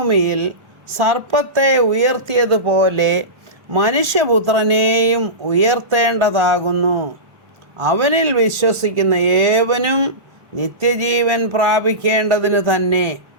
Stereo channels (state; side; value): late; left; 1.4 ms